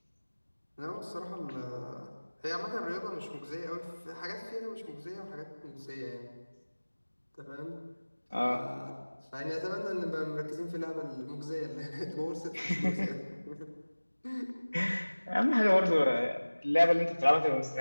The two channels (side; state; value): both; inverted; correlation -1.00